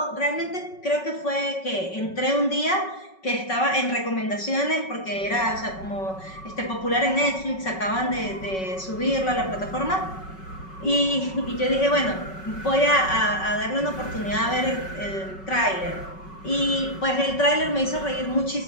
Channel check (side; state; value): right; late; 5.3 ms